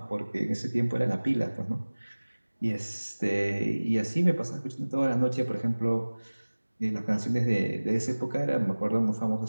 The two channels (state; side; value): inverted; both; correlation -1.00